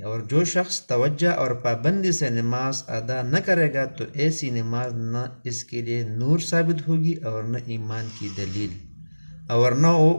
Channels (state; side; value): inverted; both; correlation -1.00